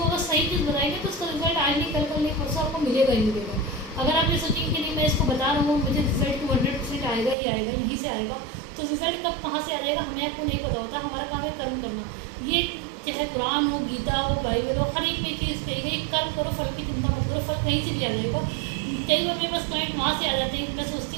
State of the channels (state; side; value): drops out; left; at 7.4 s